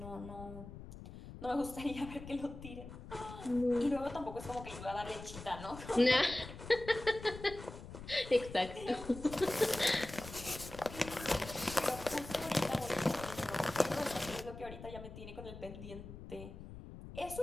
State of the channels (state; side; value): noise; left; rumble, 13 dB below the sound